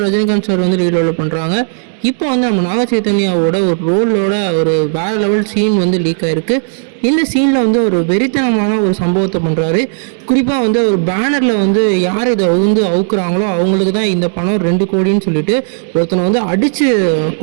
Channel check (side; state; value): left; silent; digital silence